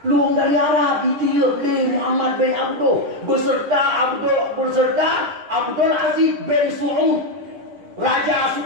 Luang dari Arab ditiup di Muhammad bin Abdul beserta Abdul Aziz bin Saud Raja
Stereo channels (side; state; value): left; late; 9.9 ms